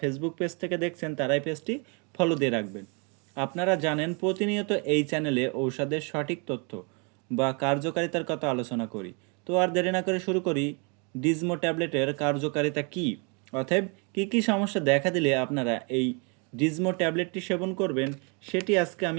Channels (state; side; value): quieter; left; 34.3 dB